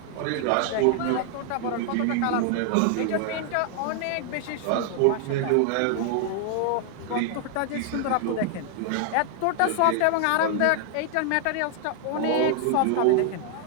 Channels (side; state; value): both; different; correlation 0.00